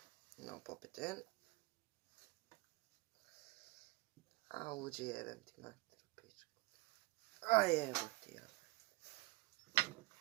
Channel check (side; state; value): left; quieter; 21.7 dB